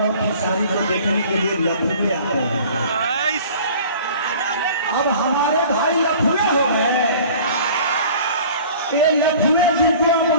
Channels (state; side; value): inverted; both; correlation -0.46